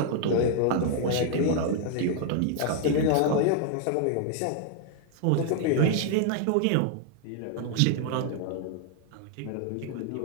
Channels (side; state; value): both; different; correlation 0.00